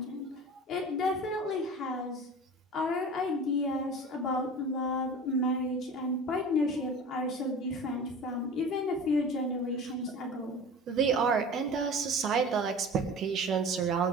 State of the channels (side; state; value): both; normal; correlation 0.37